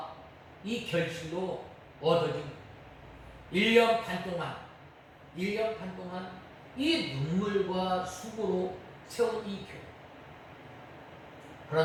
이 결실로 얻어진 1년 반 동안 이 눈물과 수고로 세운 이 교회.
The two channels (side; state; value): both; identical; correlation 1.00